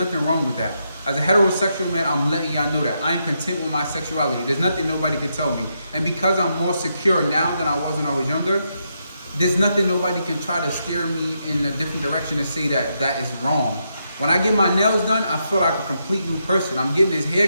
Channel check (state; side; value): inverted; both; correlation -0.81